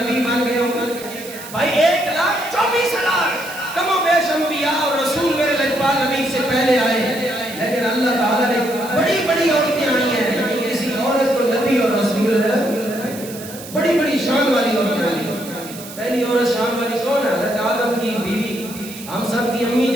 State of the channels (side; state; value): right; noise; hiss, 14 dB below the sound